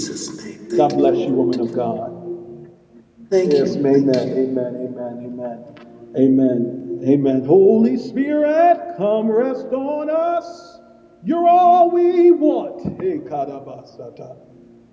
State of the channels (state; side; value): identical; both; correlation 1.00